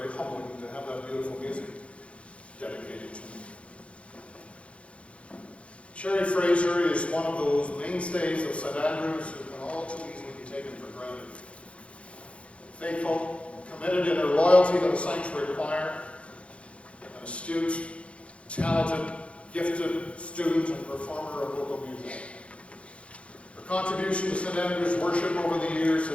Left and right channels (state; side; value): late; right; 0.061 ms